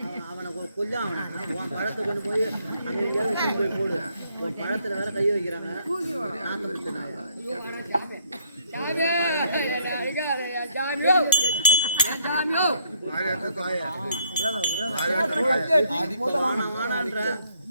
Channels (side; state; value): both; inverted; correlation -0.68